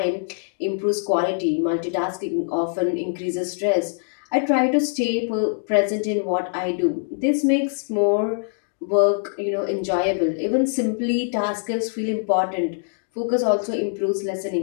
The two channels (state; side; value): silent; right; digital silence